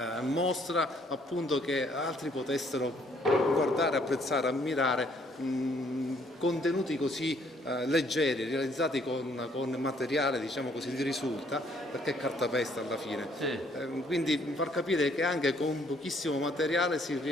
mostra, appunto, che altri potessero guardare, apprezzare, ammirare contenuti così leggeri, realizzati con materiale, diciamo così, di risulta, perché è cartapesta alla fine. Sì. Quindi far capire che anche con pochissimo materiale si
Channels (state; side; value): normal; both; correlation 0.65